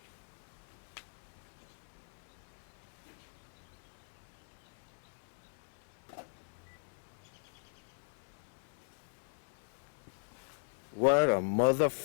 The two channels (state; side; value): silent; right; digital silence